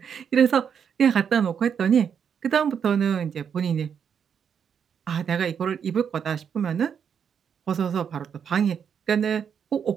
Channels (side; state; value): left; quieter; 7.5 dB